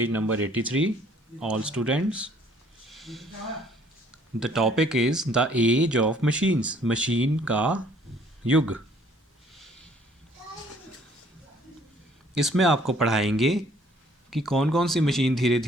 number 83, all students. The topic is The Age of Machines, machine का युग. इसमें आपको पढ़ाएंगे कि कौन कौन सी machine धीरे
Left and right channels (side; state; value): both; normal; correlation 0.60